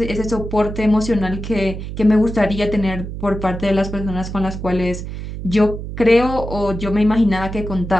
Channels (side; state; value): right; noise; hum, 8 dB below the sound